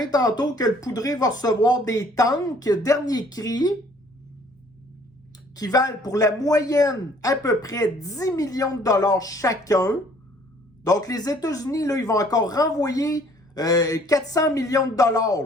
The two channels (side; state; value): both; normal; correlation 0.58